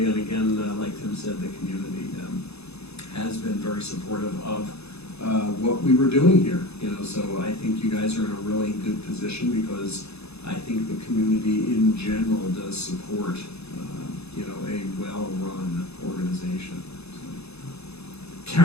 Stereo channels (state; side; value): late; right; 0.79 ms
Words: and again, like Tim said, the community has been very supportive of what we were doing here, you know, so I think you guys are in a really good position because I think the community in general does support, you know, a well-run organization. So,